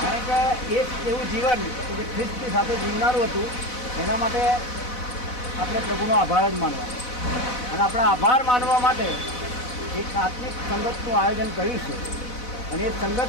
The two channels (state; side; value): late; right; 4.0 ms